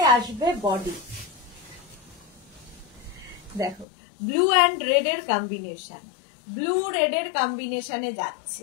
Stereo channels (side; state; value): right; drops out; at 3.9 s